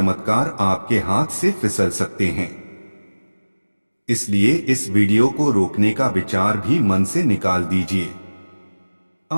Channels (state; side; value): inverted; both; correlation -1.00